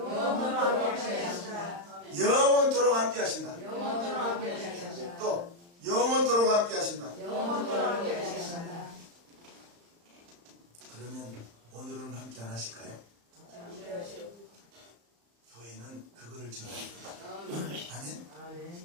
영원토록 함께 하신다. 또 영원토록 함께 하신다. 그러면 오늘은 함께 안 하실까요? 교회는 그거를 전합니다.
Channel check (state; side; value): late; left; 35 ms